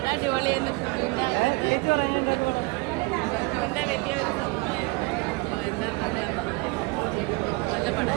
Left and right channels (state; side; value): quieter; left; 26.5 dB